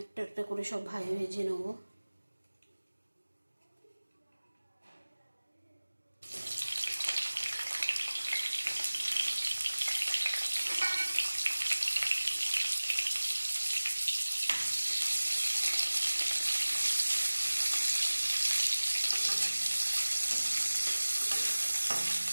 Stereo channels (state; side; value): inverted; both; correlation -1.00